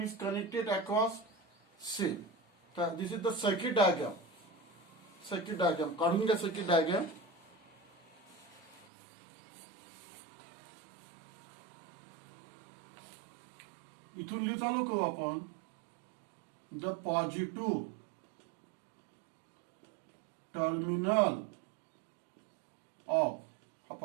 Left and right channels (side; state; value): left; drops out; at 8.8 s